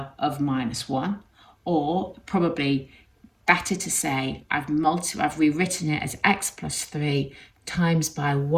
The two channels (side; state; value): both; identical; correlation 1.00